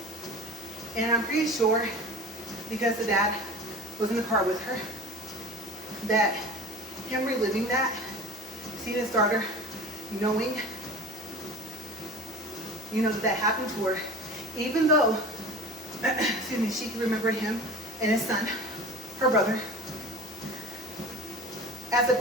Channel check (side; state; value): left; noise; hiss, 18 dB below the sound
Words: And I'm pretty sure, because the dad was in the car with her, that him reliving that, seeing his daughter, knowing, you know, that happened to her, even though, excuse me, she could remember him and his son, her brother. As a